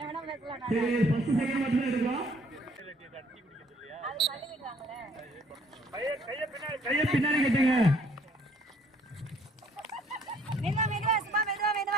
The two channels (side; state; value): both; normal; correlation 0.62